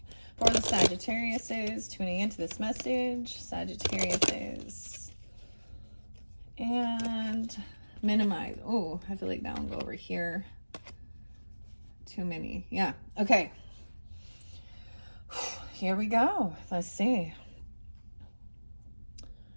For the Sagittariuses tuning into this message, Sagittariuses, and minimize. Oh, I feel like that one go over here. Too many. Yeah. Okay. Here we go. Let's see.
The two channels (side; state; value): both; inverted; correlation -1.00